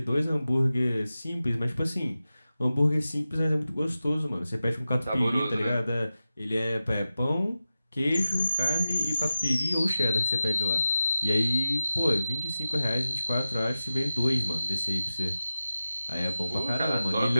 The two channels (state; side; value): inverted; both; correlation -0.94